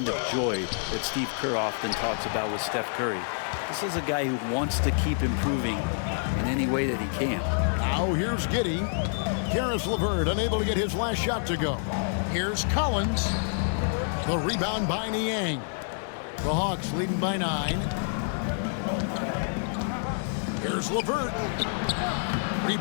of joy that Steve Kerr often talks about with Steph Curry. This is a guy who wants to keep improving in any way that he can. Now here's Giddey. Karis LeVert unable to get his last shot to go. Here's Collins. The rebound by Niang. The Hawks leading by 9. Here's LeVert.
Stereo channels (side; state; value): right; silent; 60 dB below the other